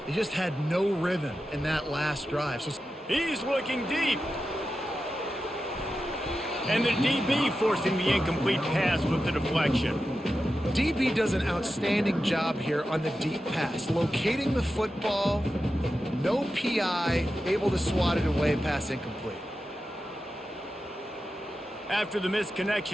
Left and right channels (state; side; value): normal; both; correlation 0.91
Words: They just had no rhythm in that last drive. So he's looking deep. And the DB forcing the incomplete pass with the deflection. DB does an outstanding job here on the deep pass. Locating the football, no PI, able to swat it away, pass incomplete. After the missed